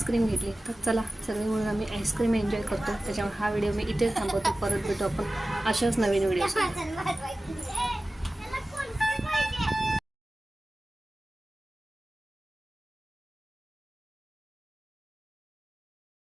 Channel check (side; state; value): both; normal; correlation 0.96